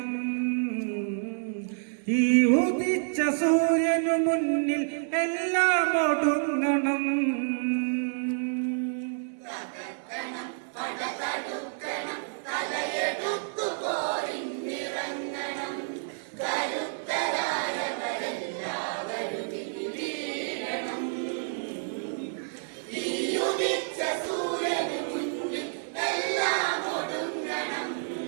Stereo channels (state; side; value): silent; left; 59 dB below the other